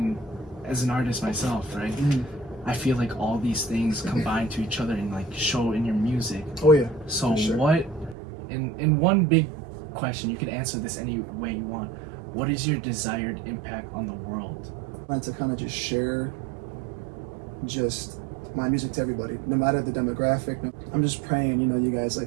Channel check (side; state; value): left; drops out; at 8.2 s